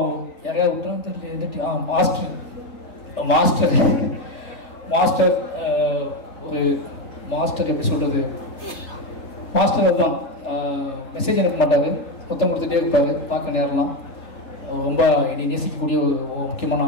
யாரையா விட்டோம் தெரியல, மாஸ்டர் ஒரு மாஸ்டர் எப்படி சொல்கிறது, மாஸ்டர் தான் மெசேஜ் அனுப்ப மாட்டார், புத்தம் கொடுத்துட்டே இருப்பார், பார்க்க நேரம்லாம். ரொம்ப என்னை நேசிக்கக்கூடிய ஒரு முக்கியமான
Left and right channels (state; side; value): late; right; 3.4 ms